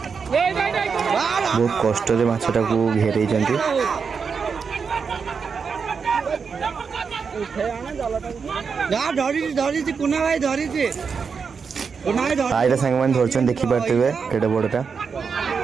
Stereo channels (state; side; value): quieter; left; 5.7 dB